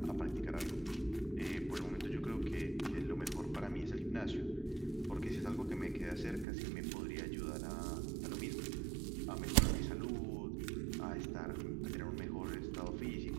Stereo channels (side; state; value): left; drops out; at 6.5 s